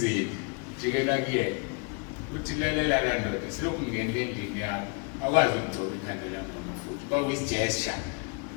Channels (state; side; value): quieter; right; 35.9 dB